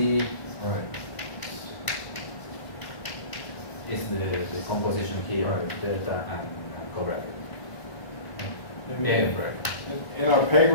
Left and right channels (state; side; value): late; right; 1.0 ms